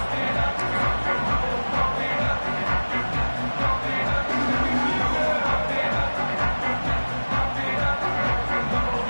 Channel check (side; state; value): both; inverted; correlation -1.00